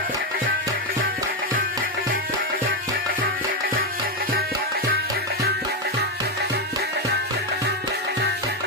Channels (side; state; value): both; normal; correlation 0.06